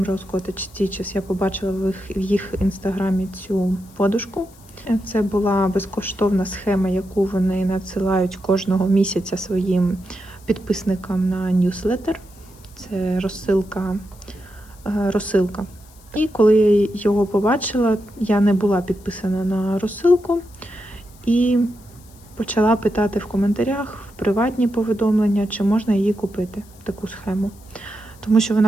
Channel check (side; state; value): left; noise; hiss, 26 dB below the sound